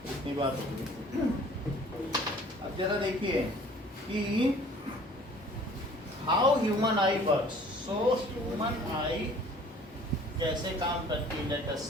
इतनी बात होगी. अब जरा देखिए कि how human I works. So human आई कैसे काम करती है, let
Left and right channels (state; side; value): normal; both; correlation 0.51